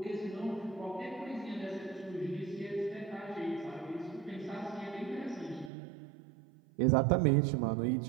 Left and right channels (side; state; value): left; drops out; at 5.7 s